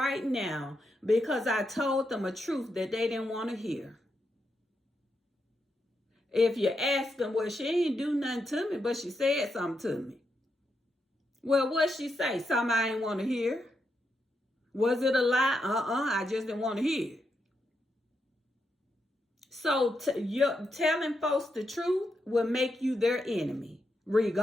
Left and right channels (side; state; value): both; normal; correlation 0.84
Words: now because I told them a truth that they didn't want to hear. If you ask them, well, she ain't do nothing to me, but she said something to me. Well, what'd she say? Something I ain't want to hear. Was it a lie? I just didn't want to hear. So telling folks the truth will make you their enemy,